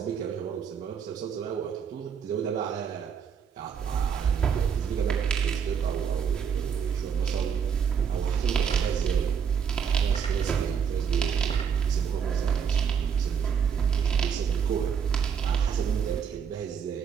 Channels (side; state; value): left; quieter; 7.1 dB